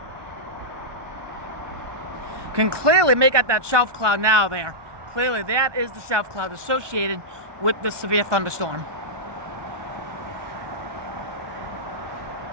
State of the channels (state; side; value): late; left; 1.2 ms